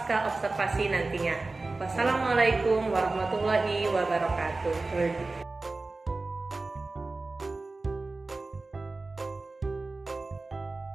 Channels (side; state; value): left; quieter; 3.4 dB